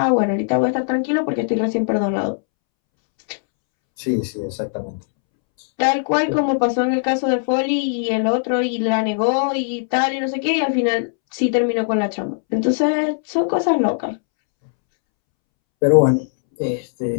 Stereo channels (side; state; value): right; silent; 66 dB below the other